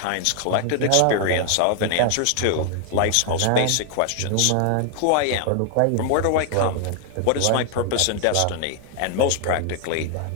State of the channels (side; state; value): both; different; correlation 0.00